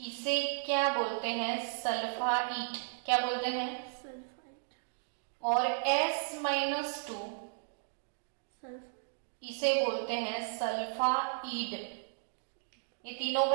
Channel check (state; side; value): silent; left; digital silence